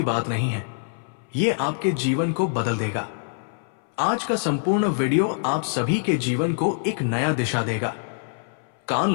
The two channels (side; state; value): right; silent; 59 dB below the other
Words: बात नहीं है। ये आपके जीवन को बदल देगा। आज का संपूर्ण वीडियो आप सभी के जीवन को एक नया दिशा देगा। कान